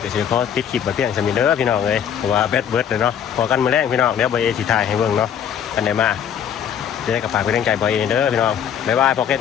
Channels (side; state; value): right; quieter; 8.8 dB